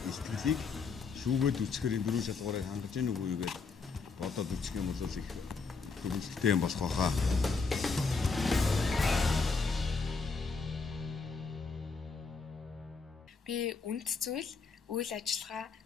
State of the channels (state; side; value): quieter; right; 4.6 dB